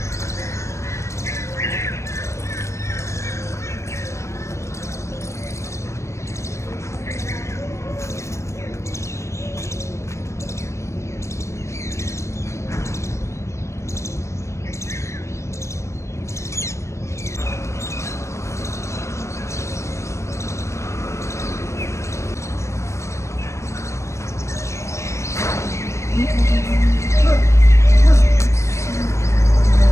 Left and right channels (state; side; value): late; right; 0.14 ms